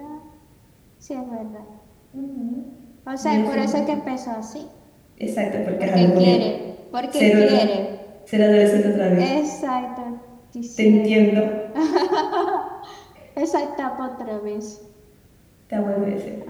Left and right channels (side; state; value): both; identical; correlation 1.00